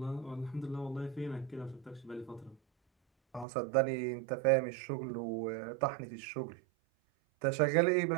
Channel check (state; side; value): drops out; left; at 3.5 s